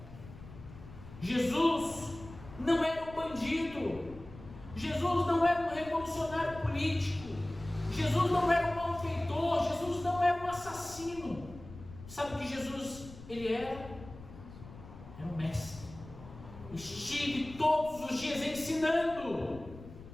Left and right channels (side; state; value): left; noise; rumble, 16 dB below the sound